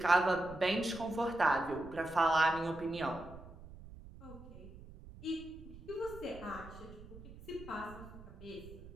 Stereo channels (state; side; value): noise; right; rumble, 16 dB below the sound